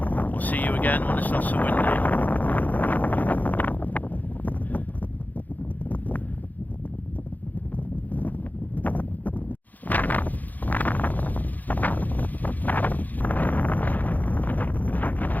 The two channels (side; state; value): right; late; 0.082 ms